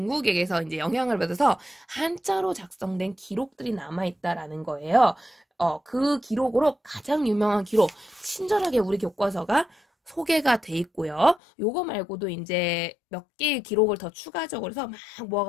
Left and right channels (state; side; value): drops out; right; at 11.4 s